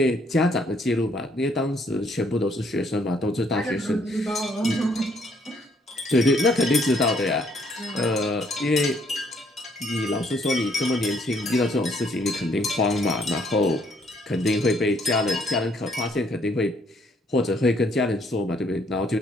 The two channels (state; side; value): normal; both; correlation 0.67